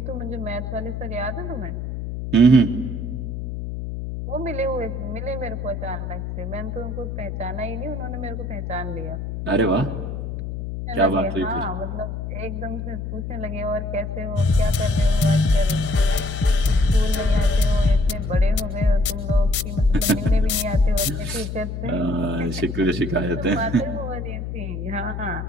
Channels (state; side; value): noise; left; hum, 5 dB below the sound